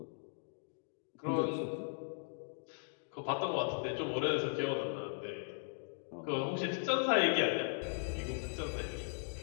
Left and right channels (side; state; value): right; silent; digital silence